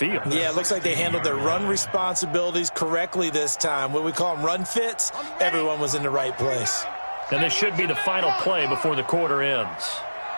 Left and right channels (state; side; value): inverted; both; correlation -1.00